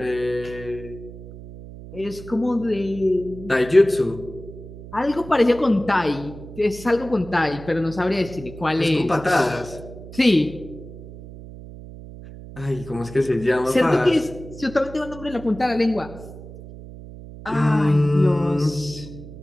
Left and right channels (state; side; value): noise; right; hum, 15 dB below the sound